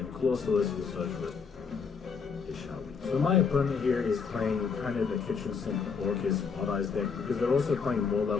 Colossus will search for it shall be. So my opponent here is playing kind of a kitchen sink Orcust Odd Eyes deck because they're also playing more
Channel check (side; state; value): right; quieter; 5.7 dB